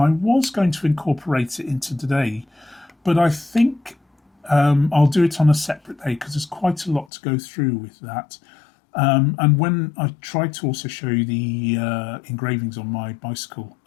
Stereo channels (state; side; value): drops out; right; at 7.1 s